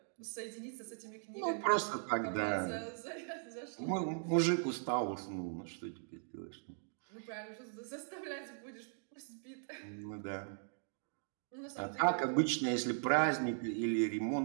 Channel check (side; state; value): left; silent; digital silence